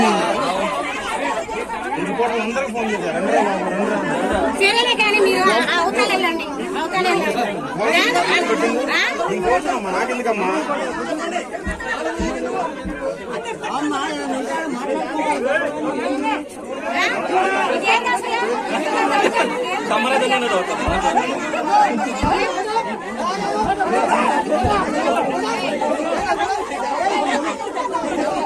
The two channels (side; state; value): both; identical; correlation 1.00